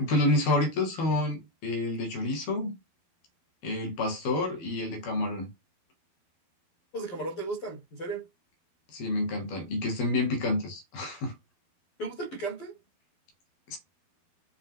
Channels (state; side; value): late; right; 12 ms